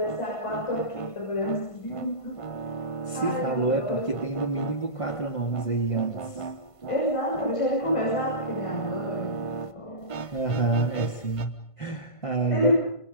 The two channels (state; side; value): late; right; 1.5 ms